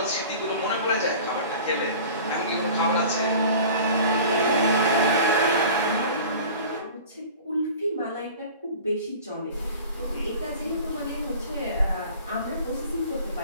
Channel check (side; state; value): both; inverted; correlation -0.41